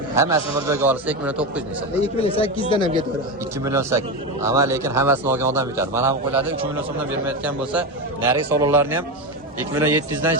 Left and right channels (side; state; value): both; normal; correlation 0.16